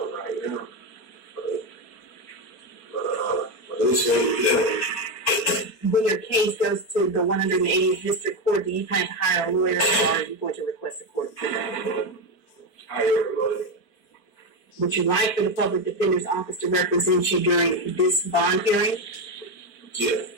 When your case goes to the 180th District Court, do you plan to hire a lawyer, or are you going to request a court appointment? Hire a lawyer. Would you like for the Public Defender's Office to represent you during this bond hearing? Yeah.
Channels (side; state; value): right; late; 4.5 ms